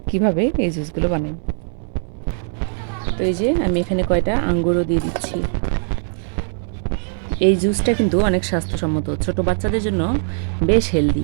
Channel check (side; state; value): left; silent; 58 dB below the other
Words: কিভাবে এই জুসগুলো বানাই। তো এই যে আমি এখানে কয়টা আঙ্গুরও দিয়ে দিচ্ছি। এই জুসটা কিন্তু অনেক স্বাস্থ্যসম্মত, ছোট বাচ্চাদের জন্য বেশ